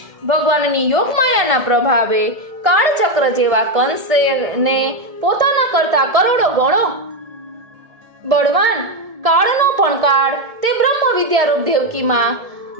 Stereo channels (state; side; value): late; left; 1.7 ms